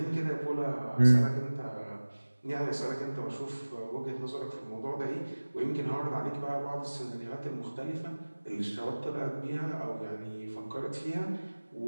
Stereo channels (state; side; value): inverted; both; correlation -1.00